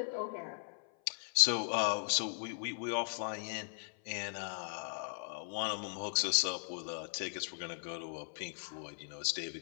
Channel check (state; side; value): silent; right; 52 dB below the other